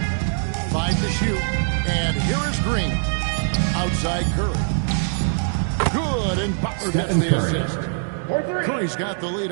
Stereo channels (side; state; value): left; silent; digital silence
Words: 5 to shoot. And here is Green. Outside Curry. Good, and Butler gets the assist. Curry's got the lead